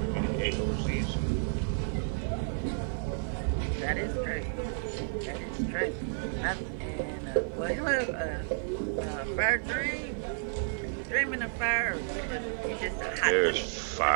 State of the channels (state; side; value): silent; left; digital silence